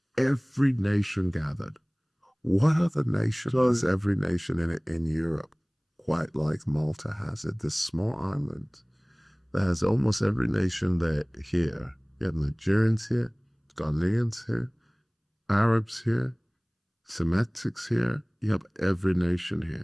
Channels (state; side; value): identical; both; correlation 1.00